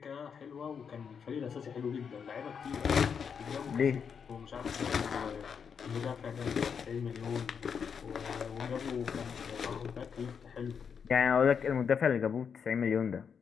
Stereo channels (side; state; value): right; quieter; 6.7 dB